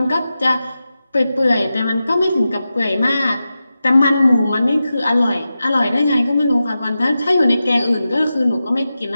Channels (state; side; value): inverted; both; correlation -0.92